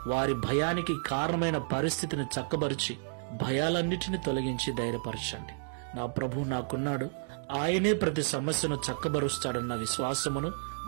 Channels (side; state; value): left; silent; digital silence